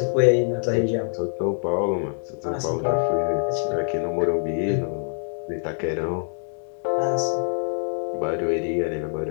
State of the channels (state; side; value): silent; right; digital silence